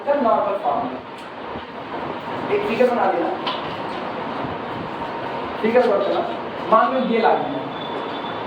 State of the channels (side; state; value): both; identical; correlation 1.00